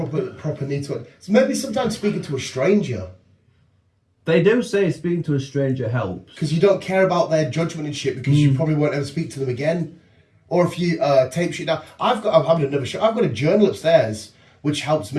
need to. So maybe sometimes speaking to a stranger. They do say speaking to a stranger helps. Because you don't care about their judgment and shit because you probably won't ever speak to them again. Or if you tape shit down. I'm having another show. I've got a journal upstairs which helps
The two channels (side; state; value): both; identical; correlation 1.00